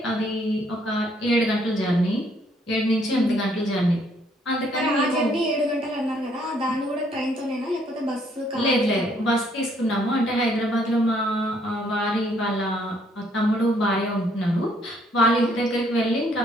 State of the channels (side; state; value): both; normal; correlation 0.67